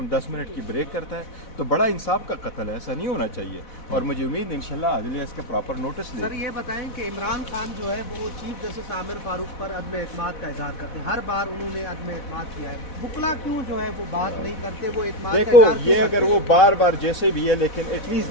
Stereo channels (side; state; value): right; late; 4.1 ms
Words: 10 मिनट की ब्रेक करता है, तो बड़ा इंसाफ का कत्ल है। ऐसा नहीं होना चाहिए और मुझे उम्मीद इंशाल्लाह अदलिया इसका प्रॉपर नोटिस ले। सर ये बताएं कि इमरान खान जो है वो चीफ जस्टिस आमिर फारूक पर अदम एतमाद का इजहार करते हैं, हर बार उन्होंने अदम एतमाद किया है, बुकला क्यों जो है वो बात नहीं करते, वो एतमाद का देखो इजहार ये क्यों अगर वो बार बार जैसे भी है, लेकिन at least